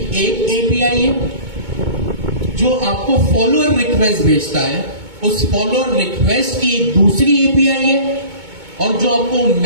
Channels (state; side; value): late; left; 2.2 ms